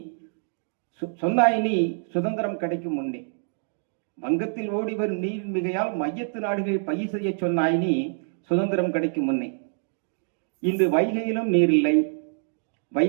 சொன்னாய் நீ சுதந்திரம் கிடைக்கும் முன்னே. வங்கத்தில் ஓடி வரும் நீரின் மிகையால் மையத்து நாடுகள் பயிர் செய்ய சொன்னாய் நீ சுதந்திரம் கிடைக்கும் முன்னே. இன்று வைகையிலும் நீரில்லை,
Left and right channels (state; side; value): silent; left; digital silence